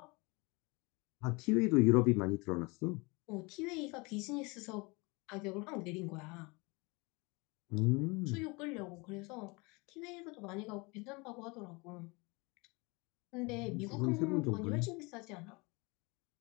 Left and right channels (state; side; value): quieter; right; 27.0 dB